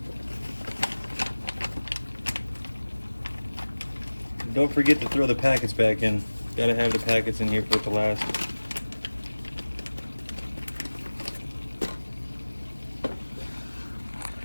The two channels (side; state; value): both; inverted; correlation -1.00